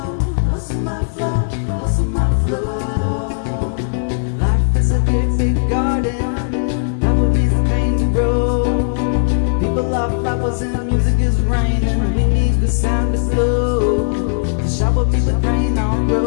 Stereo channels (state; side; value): silent; right; digital silence